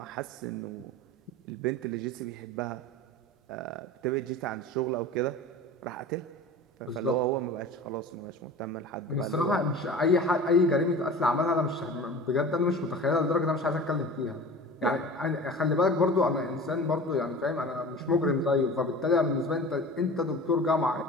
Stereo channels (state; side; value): normal; both; correlation 0.37